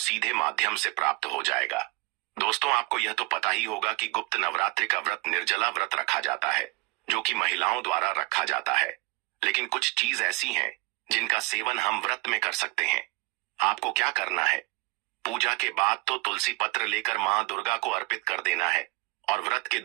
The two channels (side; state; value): left; quieter; 25.1 dB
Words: माध्यम से प्राप्त हो जाएगा। दोस्तों, आपको यह तो पता ही होगा कि गुप्त नवरात्रि का व्रत निर्जला व्रत रखा जाता है, जो कि महिलाओं द्वारा रखा जाता है। लेकिन कुछ चीज ऐसी हैं जिनका सेवन हम व्रत में कर सकते हैं। आपको क्या करना है? पूजा के बाद तो तुलसी पत्र लेकर मां दुर्गा को अर्पित कर देना है और व्रत के